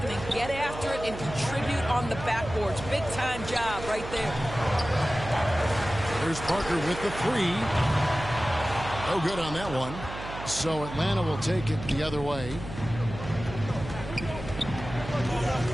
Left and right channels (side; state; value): right; noise; hum, 10 dB below the sound